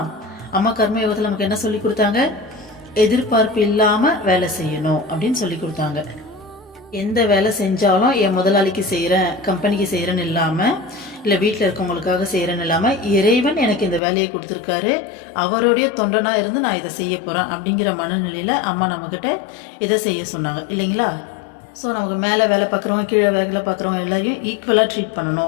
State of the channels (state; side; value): drops out; right; at 14.0 s